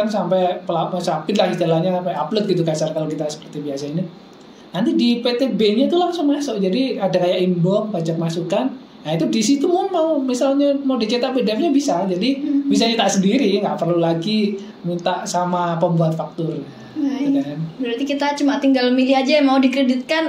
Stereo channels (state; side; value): identical; both; correlation 1.00